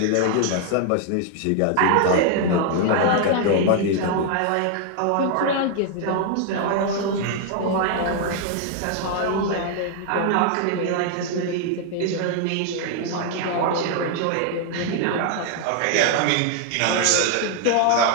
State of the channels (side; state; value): both; different; correlation 0.00